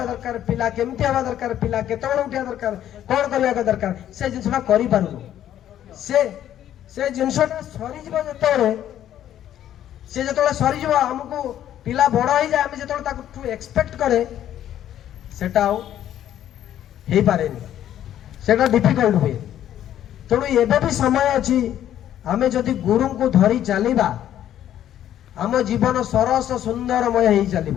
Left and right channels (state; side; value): quieter; right; 11.3 dB